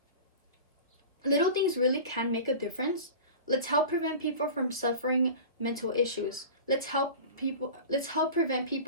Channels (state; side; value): inverted; both; correlation -0.34